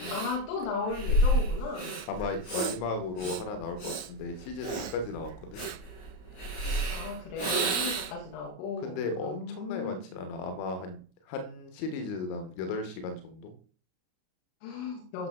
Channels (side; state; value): right; late; 33 ms